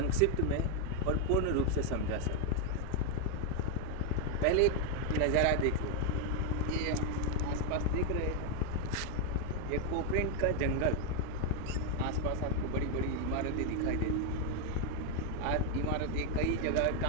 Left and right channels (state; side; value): different; both; correlation 0.01